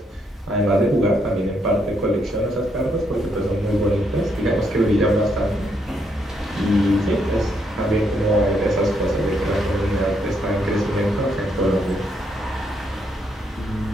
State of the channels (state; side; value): normal; both; correlation 0.75